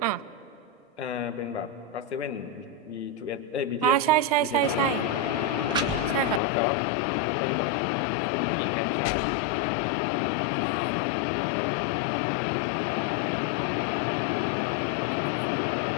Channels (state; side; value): drops out; right; at 6.4 s